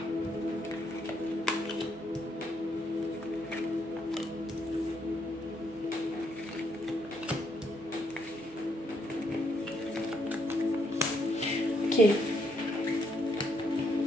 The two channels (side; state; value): both; normal; correlation 0.74